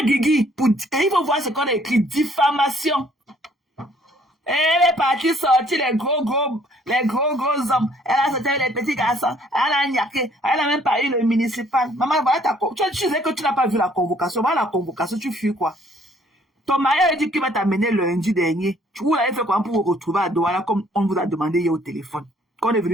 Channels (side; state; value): both; normal; correlation 0.62